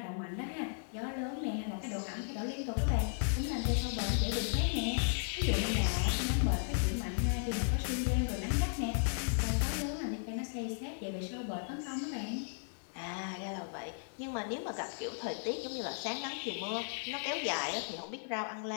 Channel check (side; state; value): right; silent; digital silence